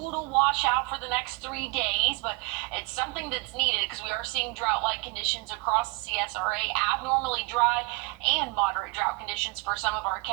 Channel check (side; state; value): left; quieter; 26.8 dB